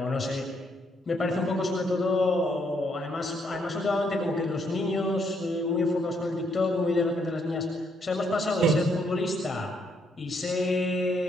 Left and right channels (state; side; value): normal; both; correlation 0.73